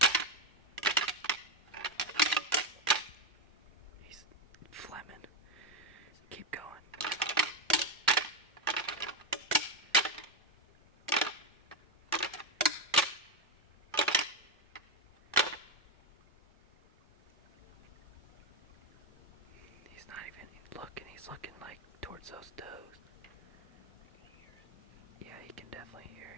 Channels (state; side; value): normal; both; correlation 0.09